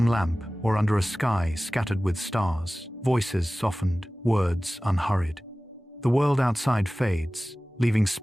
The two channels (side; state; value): both; normal; correlation 0.97